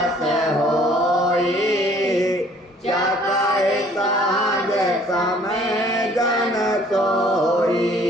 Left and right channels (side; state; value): both; normal; correlation 0.56